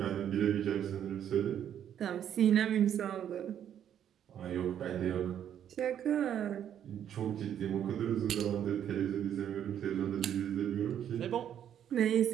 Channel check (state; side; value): quieter; left; 9.7 dB